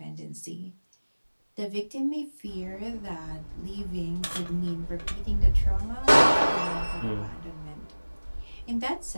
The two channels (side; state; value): both; inverted; correlation -1.00